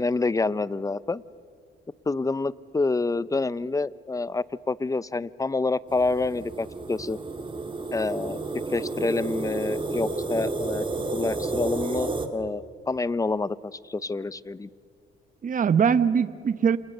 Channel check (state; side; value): normal; both; correlation 0.71